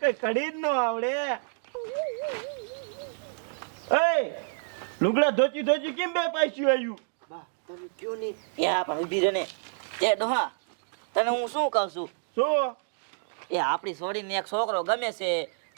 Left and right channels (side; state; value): left; silent; digital silence